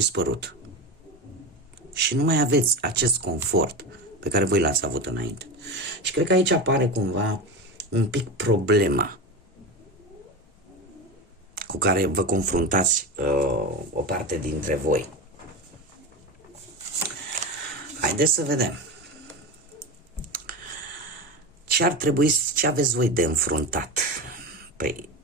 Și nu mai aveți acest confort pe care voi l-ați avut înainte. Și cred că aici apare cumva un pic problema cu care vă confruntați o parte dintre voi. Haideți să vedem. Ce aveți voi de înfruntat? Păi,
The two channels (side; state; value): both; normal; correlation 0.23